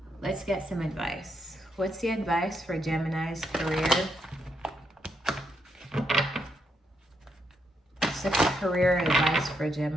let's get some advice. What's the advice for Gemini's career? What's the career advice for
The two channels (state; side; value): normal; both; correlation 0.80